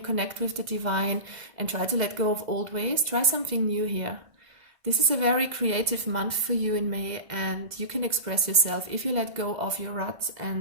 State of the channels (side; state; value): left; late; 2.0 ms